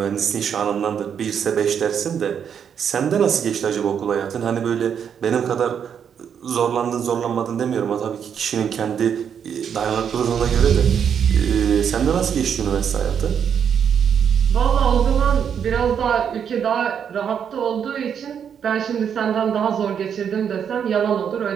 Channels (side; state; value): left; quieter; 7.9 dB